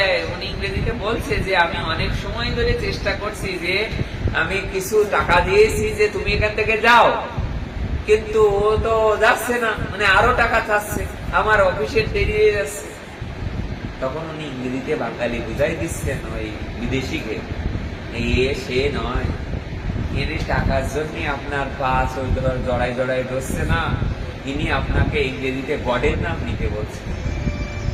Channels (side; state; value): both; identical; correlation 1.00